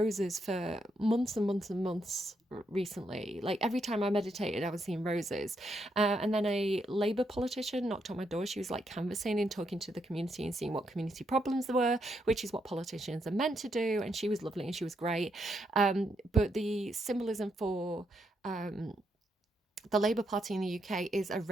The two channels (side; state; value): both; normal; correlation 0.79